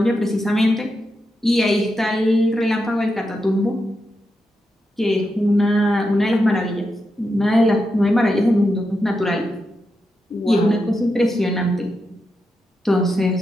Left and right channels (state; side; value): normal; both; correlation 0.87